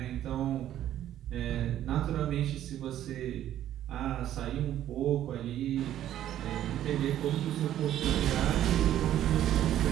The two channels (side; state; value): left; quieter; 11.9 dB